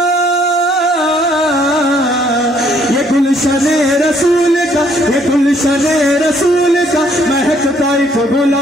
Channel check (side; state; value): both; normal; correlation 0.66